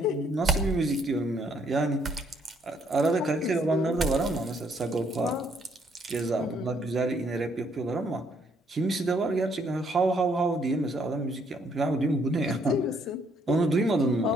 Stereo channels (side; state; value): both; normal; correlation 0.69